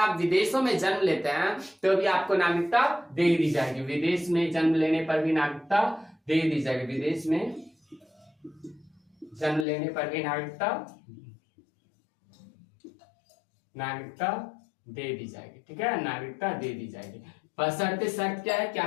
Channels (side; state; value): right; drops out; at 9.7 s